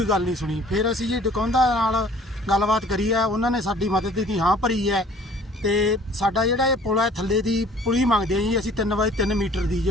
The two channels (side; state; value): both; normal; correlation 0.52